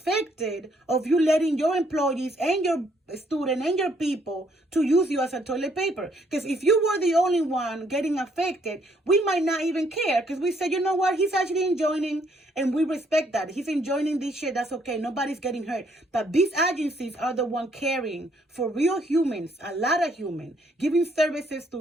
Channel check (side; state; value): both; normal; correlation 0.68